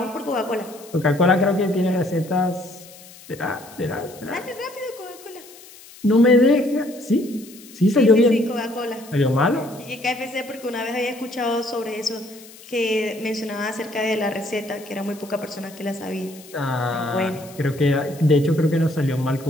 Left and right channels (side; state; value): left; noise; hiss, 20 dB below the sound